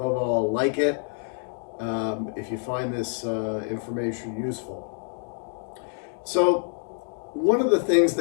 all, like it if you find this information useful. So one of the things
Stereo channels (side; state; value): right; silent; 57 dB below the other